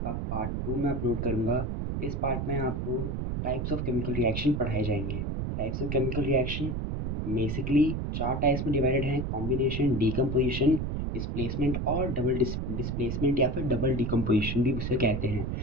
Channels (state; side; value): noise; right; rumble, 2 dB below the sound